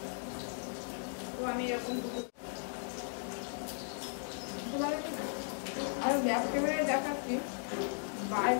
তো আমি এরকম দুটো তোমাদেরকে আর ব্যাক ক্যামেরায় দেখাচ্ছি,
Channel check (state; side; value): silent; right; 53 dB below the other